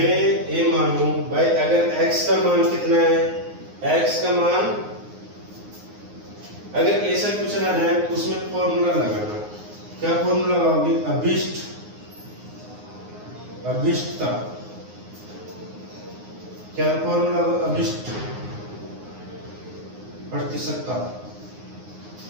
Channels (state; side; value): late; left; 9.6 ms